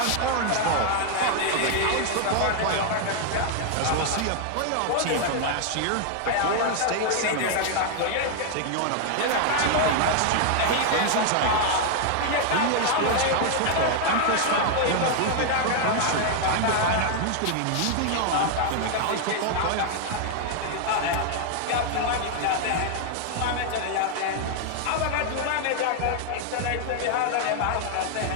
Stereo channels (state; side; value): different; both; correlation 0.00